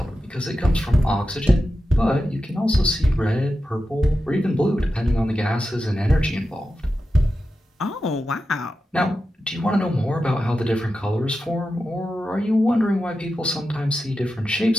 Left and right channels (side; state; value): both; normal; correlation 0.91